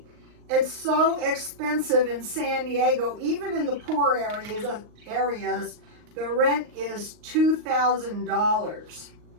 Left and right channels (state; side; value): late; left; 39 ms